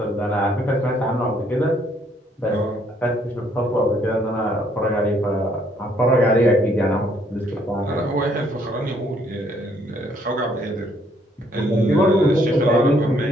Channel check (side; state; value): both; normal; correlation 0.67